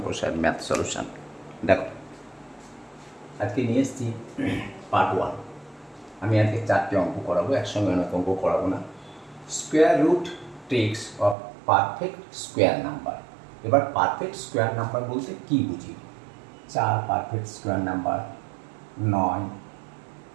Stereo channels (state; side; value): drops out; left; at 11.4 s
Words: sir math solution. দেখো, আজকে নিয়ে এসেছি পার্ট 1। আমি আজকে 4টে অঙ্ক করাবো, একসঙ্গে অনেক অঙ্ক করাবো না। Square root tricks of perfect square number. এবার পারফেক্ট স্কোয়ার নাম্বার বলতে কী বুঝি? 4 পারফেক্ট স্কোয়ার নাম্বার, 9,